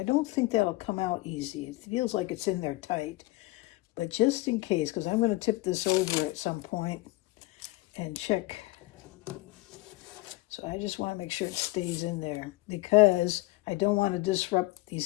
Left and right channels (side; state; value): right; quieter; 19.8 dB